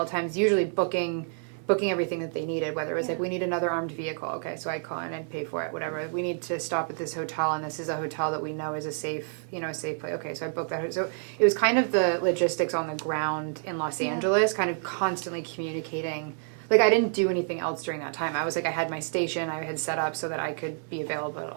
times, usually booking everything that they needed, whether it was like, we need another armed vehicle, okay, so I'd call in and pay for it, whatever, we need to stop at this hotel, and this is a hotel that we know is a safe place, okay, so I booked that. So it was kind of the logistics on the ground in Los Angeles, kind of constantly communicating. Like, I didn't do anything else during that time. I was like, I had my station, I had set up so that I could be available at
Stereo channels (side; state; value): left; silent; 59 dB below the other